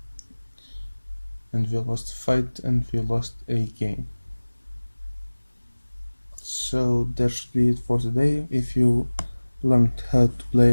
And we lost the fight and we lost a game. So that should be it for today. If you learned how to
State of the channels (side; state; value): both; inverted; correlation -1.00